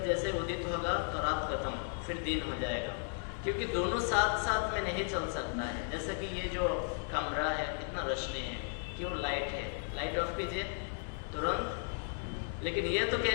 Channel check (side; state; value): right; silent; 54 dB below the other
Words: जैसे उदित होगा तो रात खत्म, फिर दिन हो जाएगा। क्योंकि दोनों साथ साथ में नहीं चल सकता है। जैसे कि ये जो कमरा है कितना रोशनी है, क्यों? लाइट है, लाइट ऑफ कीजिए तुरंत। लेकिन ये तो